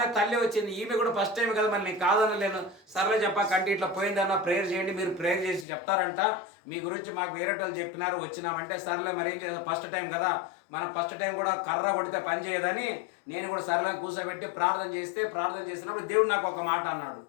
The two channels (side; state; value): right; drops out; at 5.7 s